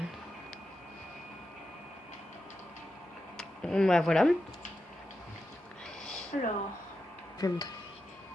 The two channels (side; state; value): both; normal; correlation 0.88